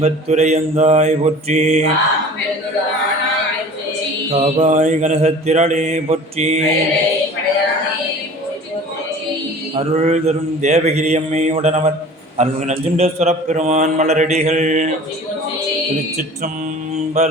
போற்றி, காவாய் கனசத்திரளே போற்றி, அருள் தரும் தேவகிரியம்மை உடனவர் அருள் நஞ்சுண்டேஸ்வரப் பெருமான் மலரடிகள்.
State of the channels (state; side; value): normal; both; correlation 0.43